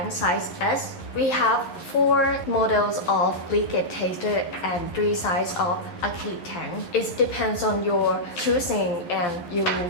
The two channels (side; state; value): right; late; 11 ms